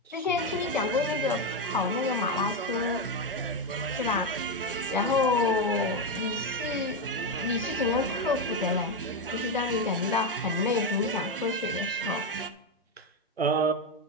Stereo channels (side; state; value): both; normal; correlation 0.08